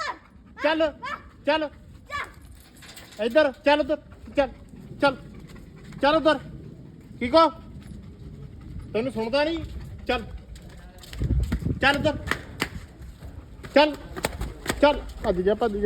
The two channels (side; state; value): both; identical; correlation 1.00